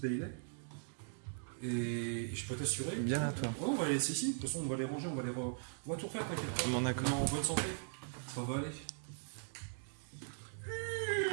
Bailey. Et je peux t'assurer. Bien à toi. Oh, on va les laisser ici. De toute façon, on va les ranger, on va tout refaire, t'inquiète pas. Bon, d'accord. On est en bonne santé. Ça va aller.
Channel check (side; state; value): left; silent; digital silence